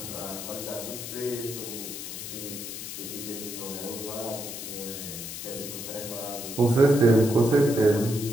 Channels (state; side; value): noise; left; hiss, 8 dB below the sound